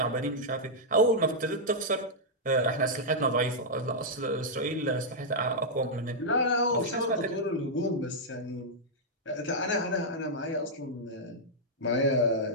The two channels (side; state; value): both; normal; correlation -0.07